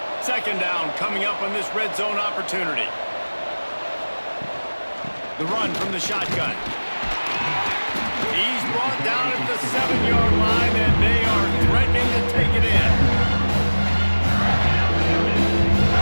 2nd down coming up on this red zone opportunity. The run from the shotgun. He's brought down at the 7-yard line, and they are threatening to take it in.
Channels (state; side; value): inverted; both; correlation -1.00